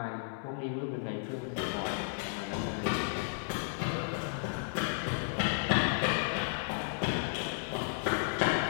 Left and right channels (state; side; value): silent; right; 55 dB below the other